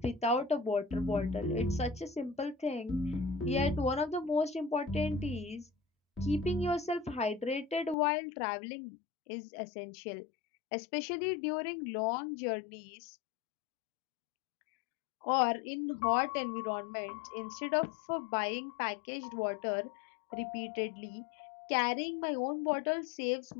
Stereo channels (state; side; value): drops out; right; at 8.0 s